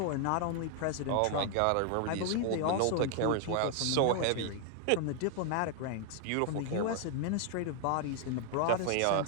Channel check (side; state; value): both; different; correlation 0.00